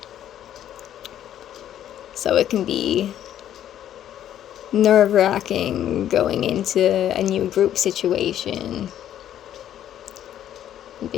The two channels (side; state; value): right; quieter; 11.0 dB